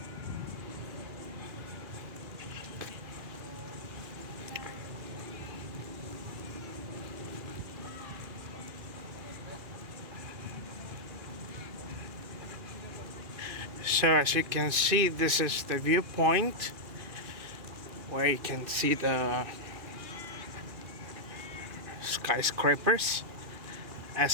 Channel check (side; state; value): left; late; 2.4 ms